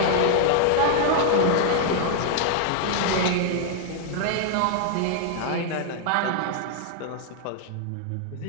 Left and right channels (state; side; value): different; both; correlation 0.00